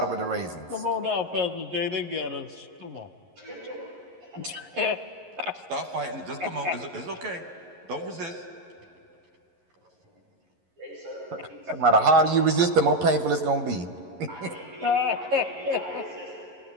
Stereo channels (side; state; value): left; late; 11 ms